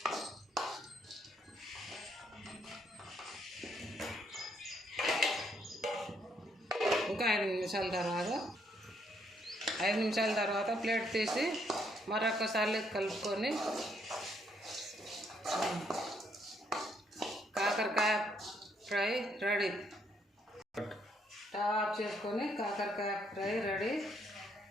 ఇంకా 5 నిమిషాల తర్వాత ప్లేట్ తీసి మరొకసారి కలుపుకొని కాకరకాయ ఫ్రై రెడీ. స్టవ్ ఆఫ్ చేసుకొని కాకరకాయ ఫ్రై రెడీ.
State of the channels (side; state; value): both; normal; correlation 0.72